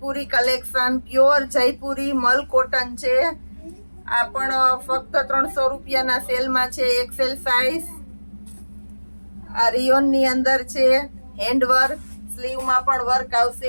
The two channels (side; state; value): both; inverted; correlation -1.00